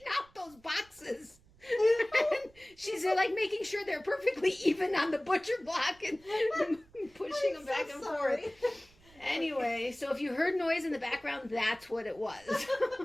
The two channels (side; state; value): right; noise; rumble, 28 dB below the sound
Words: out those boxes. And she's like making sure they're perfectly even on the butcher block and pushing them back and forth. Anyway, so if you heard noise in the background, that's what it was.